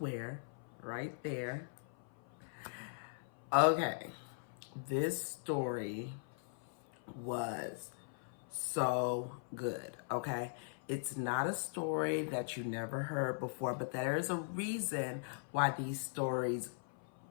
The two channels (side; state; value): right; silent; 51 dB below the other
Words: right there. Okay, this story was so good, okay? It's not a story that you never heard before, but there is a reason why these stories